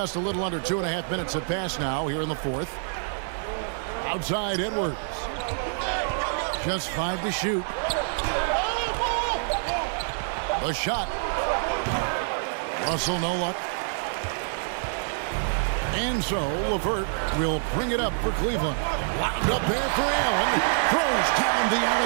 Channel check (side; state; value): left; silent; digital silence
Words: a little under 2.5 minutes have passed now here in the fourth. Outside Edwards. Just 5 to shoot. The shot. Russell no luck. And so LeVert will bring it up for Cleveland. Wound up there for Allen. Throws down the